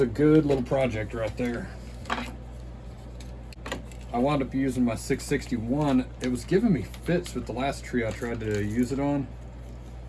a good little project right there. I wound up using my 661. It was giving me fits with the last tree I tried to use it on.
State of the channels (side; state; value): both; identical; correlation 1.00